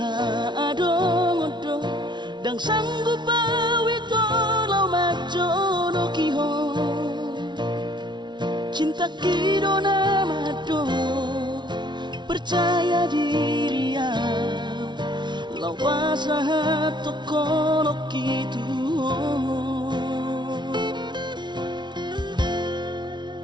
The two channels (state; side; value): late; left; 0.22 ms